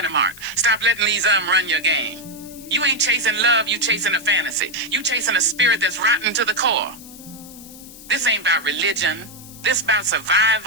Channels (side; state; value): left; noise; hiss, 18 dB below the sound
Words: a mark. Stop letting these run your game. You ain't chasing love, you chasing a fantasy. You chasing a spirit that's rotten to the core. This ain't about religion. This about